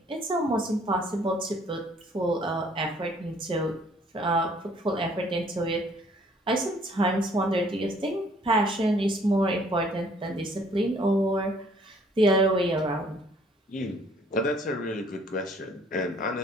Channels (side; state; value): both; normal; correlation 0.60